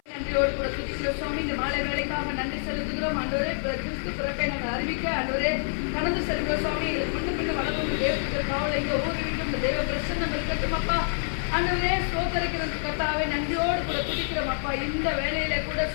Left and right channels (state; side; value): silent; right; 58 dB below the other